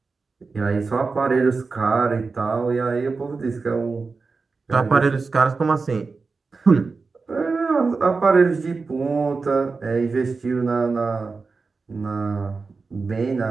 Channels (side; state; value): left; quieter; 4.3 dB